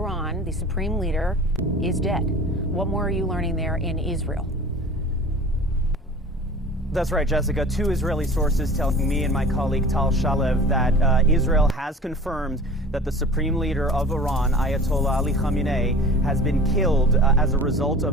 the supreme leader, is dead. What more are you learning there in Israel? That's right, Jessica. Two Israeli sources telling me and my colleague Tal Shalev that Israel has confirmed that the supreme leader of Iran, Ayatollah Ali Khamenei, has been killed as a result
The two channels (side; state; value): both; normal; correlation 0.41